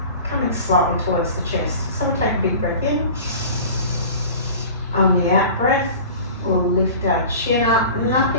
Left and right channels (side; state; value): both; inverted; correlation -0.39